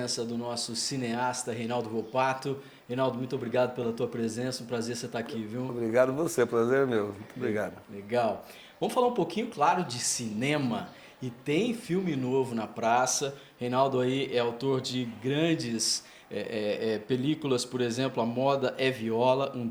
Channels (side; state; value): both; identical; correlation 1.00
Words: do nosso cineasta Reinaldo Volpato. Reinaldo, muito obrigado pela tua presença, um prazer você estar aqui, viu? Obrigado você, prazer é meu. Muito obrigado. Legal. Vamos falar um pouquinho, claro, de cinema. E tem filme novo na praça. Reinaldo aí é autor de grandes películas, por exemplo, A Moda é Viola, um